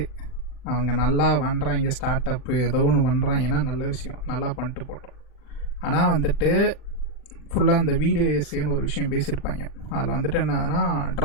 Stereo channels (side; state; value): right; late; 39 ms